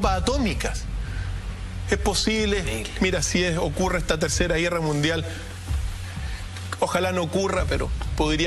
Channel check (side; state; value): both; identical; correlation 1.00